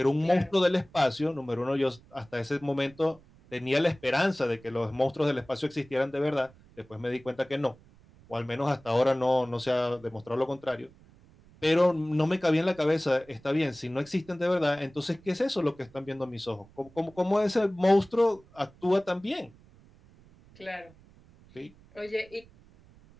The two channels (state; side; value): noise; right; rumble, 26 dB below the sound